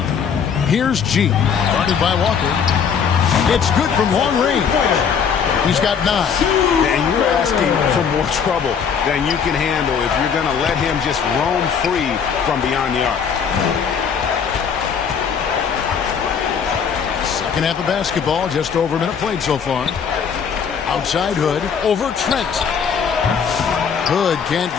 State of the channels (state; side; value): quieter; right; 6.9 dB